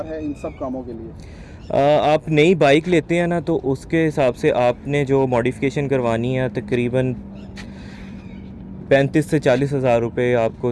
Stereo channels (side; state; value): both; identical; correlation 1.00